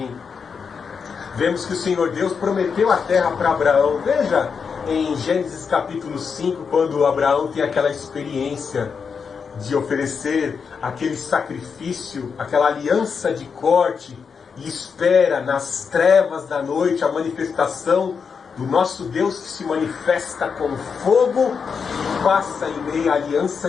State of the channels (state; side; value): quieter; right; 5.9 dB